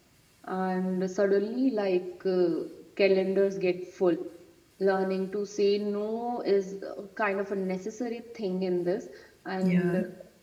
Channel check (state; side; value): identical; both; correlation 1.00